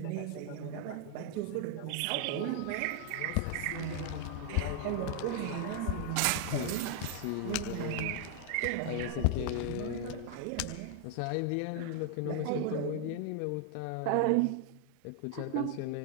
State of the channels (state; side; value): different; both; correlation 0.00